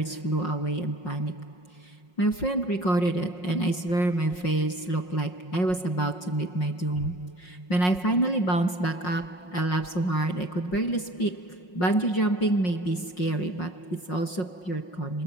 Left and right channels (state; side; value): late; right; 5.5 ms